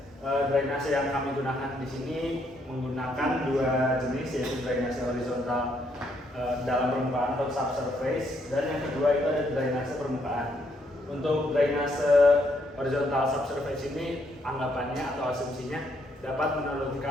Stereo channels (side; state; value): both; normal; correlation 0.73